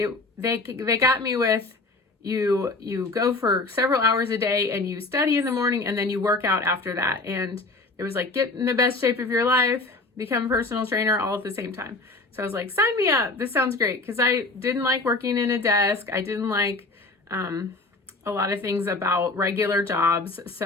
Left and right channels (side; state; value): right; quieter; 3.3 dB